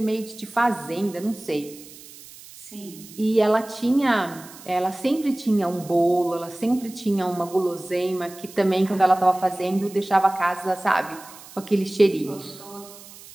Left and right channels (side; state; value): right; noise; hiss, 19 dB below the sound